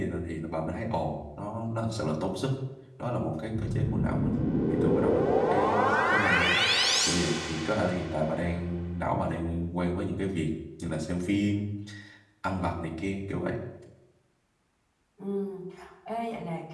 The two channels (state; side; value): identical; both; correlation 1.00